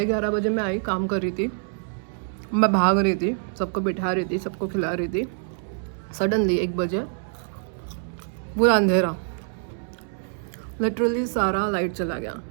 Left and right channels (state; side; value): silent; left; 61 dB below the other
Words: बजे मैं आई, काम कर रही थी, मैं भाग रही थी, सबको बिठा रही थी, सबको खिला रही थी। सडनली 1 बजे पूरा अंधेरा, लिटरली सारा लाइट चला गया।